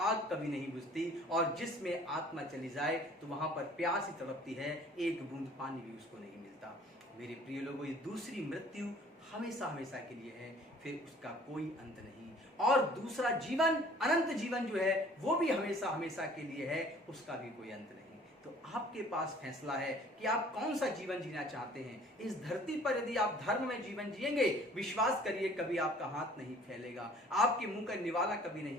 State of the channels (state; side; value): normal; both; correlation 0.53